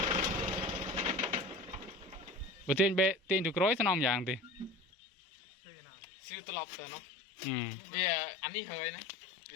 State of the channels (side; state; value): right; drops out; at 4.9 s